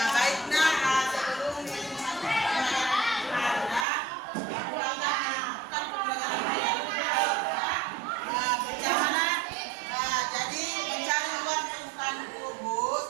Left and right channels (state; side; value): drops out; left; at 3.9 s